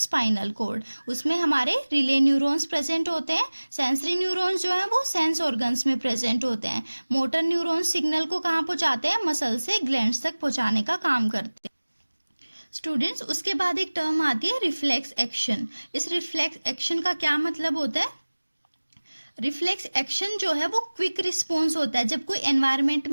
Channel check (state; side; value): inverted; both; correlation -1.00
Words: कॉर्ड। उसमें हमारे रिले न्यूरॉन्स प्रेजेंट होते हैं। सेंसरी न्यूरॉन्स जो है वो सेंस ऑर्गन्स में प्रेजेंट होते हैं। मोटर न्यूरॉन्स सिग्नल को कहाँ पहुँचाते हैं? मसल से ग्लैंड्स तक पहुँचाने का काम करते हैं। स्टूडेंट्स, उसके बाद एक टर्म आती है रिफ्लेक्स एक्शन। इस रिफ्लेक्स एक्शन का क्या मतलब होता है? रिफ्लेक्स एक्शन जो है वो क्विक रिस्पॉन्स होता है। जब कोई एनवायरनमेंट